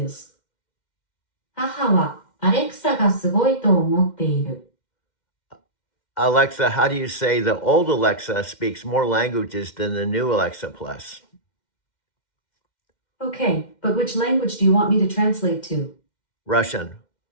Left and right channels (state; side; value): late; right; 2.1 ms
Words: 母はアレクサがすごいと思っている。Alexa, how do you say the old Alexa speaks more languages than the new Alexa Plus? Okay, but which language do you want me to translate to? Russian.